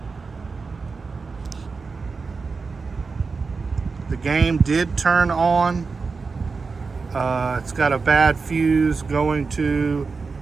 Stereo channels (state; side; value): quieter; left; 4.6 dB